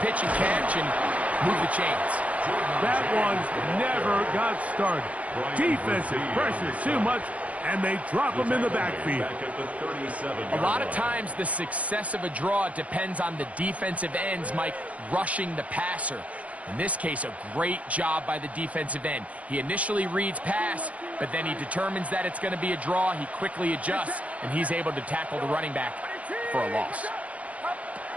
and catch and move the chains. That one never got started. Defensive pressure too much, and they drop him in the backfield. A lot of times the success of a draw depends on the defensive ends, Mike, rushing the passer. In this case, a great job by the defensive end. He initially reads pass, but then he determines that it's going to be a draw. He quickly adjusts, and he's able to tackle the running back for a loss.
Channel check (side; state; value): left; late; 0.067 ms